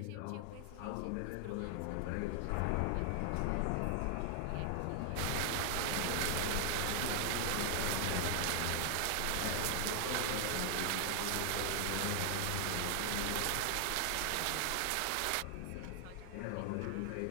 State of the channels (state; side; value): different; both; correlation 0.00